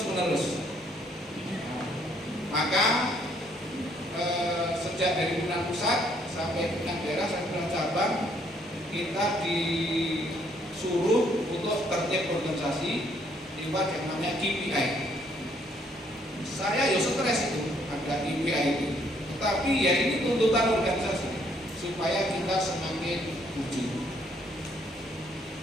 menerus. Maka sejak dari pimpinan pusat sampai pimpinan daerah sampai pimpinan cabang, kita disuruh untuk tertib organisasi lewat yang namanya KPI. Saya ya stres itu ada KPI itu. Tetapi ya ini tuntutan organisasi supaya kita semakin maju.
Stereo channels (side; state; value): both; normal; correlation 0.67